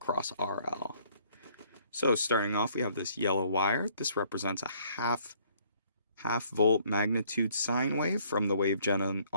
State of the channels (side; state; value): both; inverted; correlation -0.62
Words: RL. So starting off, we have this yellow wire. This represents a half volt magnitude sine wave from the wave gen